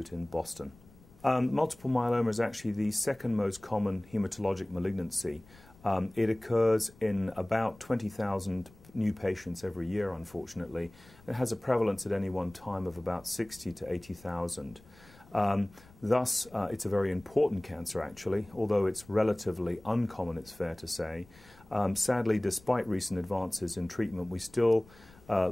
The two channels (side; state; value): left; noise; rumble, 25 dB below the sound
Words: in Boston. Multiple myeloma is actually the second most common hematologic malignancy. It occurs in about 20,000 new patients every year, unfortunately. It has a prevalence at any one time of about 60 to 80,000. Thus, it's a very important cancer, actually, although it's relatively uncommon, it's fair to say. Sadly, despite recent advances in treatment, we still